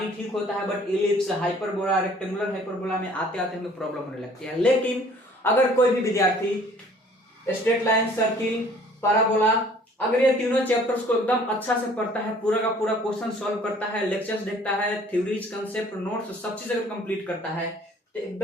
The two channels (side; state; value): both; normal; correlation 0.54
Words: ठीक होता है, but ellipse, hyperbola, rectangular hyperbola में आते आते हमें प्रॉब्लम होने लगती है। लेकिन अगर कोई भी विद्यार्थी स्ट्रेट लाइन, सर्किल, पैराबोला, अगर ये तीनों चैप्टर्स को एकदम अच्छा से पढ़ता है, पूरा का पूरा क्वेश्चन सॉल्व करता है, लेक्चर्स देखता है, थ्योरीज, कंसेप्ट, नोट्स, सब चीज अगर कंप्लीट करता है, तो